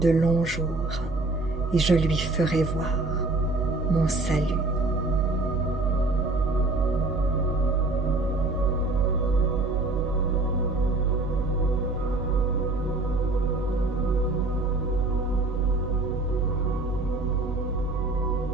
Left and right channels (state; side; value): quieter; left; 3.0 dB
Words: longs jours et je lui ferai voir mon salut.